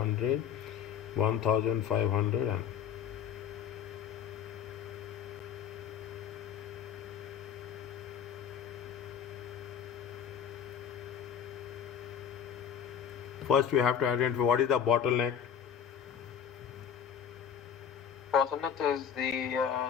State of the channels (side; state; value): right; quieter; 8.2 dB